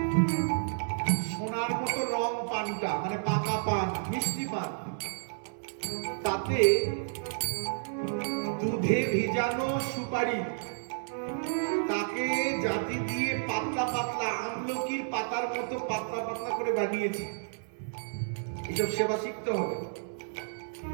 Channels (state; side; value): silent; left; 57 dB below the other